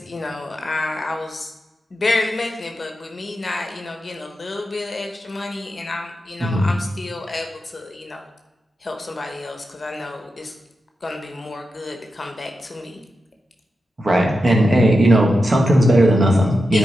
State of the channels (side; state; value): both; normal; correlation 0.89